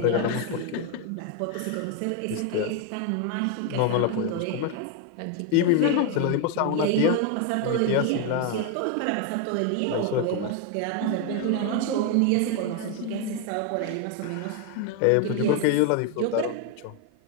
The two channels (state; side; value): different; both; correlation 0.01